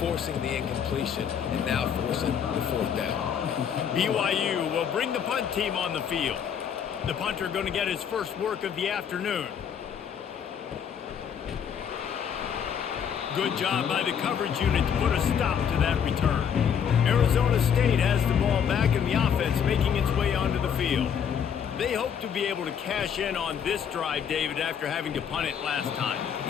forcing the incompletion, and now forcing the fourth down. BYU will bring the punt team on the field. The punter going to get his first work of the afternoon. Good job by the coverage unit to put a stop to that return. Arizona State has the ball back and the offense making its way onto the field. They hope to be able to cash in on this drive, David, after having to punt it last time.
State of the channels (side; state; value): right; quieter; 7.9 dB